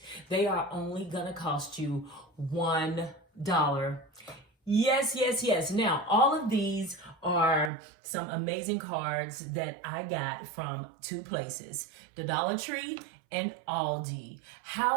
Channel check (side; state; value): left; drops out; at 7.7 s